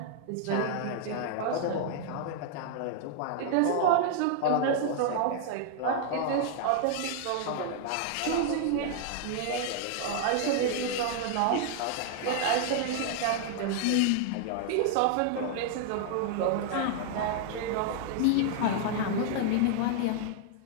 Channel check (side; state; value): both; different; correlation 0.00